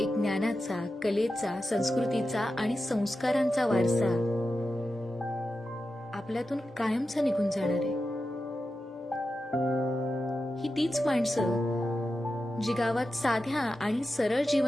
ज्ञानाचा, कलेचा, संस्कृतीचा आणि संस्कारांचा वारसा आपल्यातून कायमचा निघून जाणार आहे. ही तीच माणसं जी गावात साध्या आणि सरळ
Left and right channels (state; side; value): normal; both; correlation 0.91